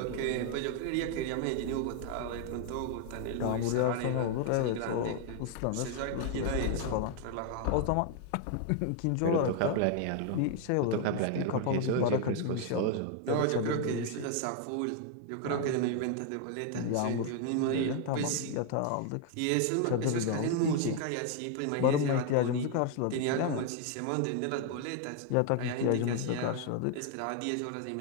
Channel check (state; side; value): different; both; correlation 0.00